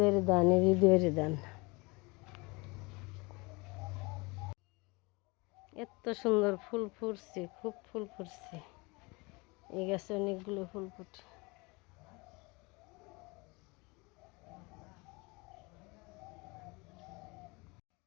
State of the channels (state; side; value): quieter; right; 26.4 dB